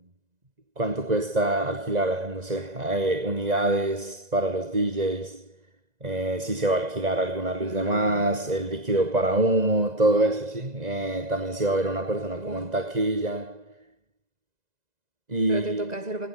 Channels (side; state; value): left; late; 2.0 ms